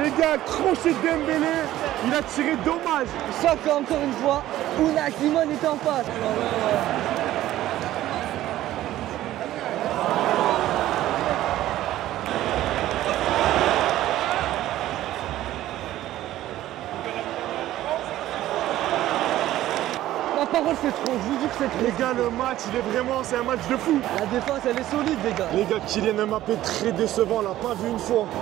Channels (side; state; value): left; quieter; 14.2 dB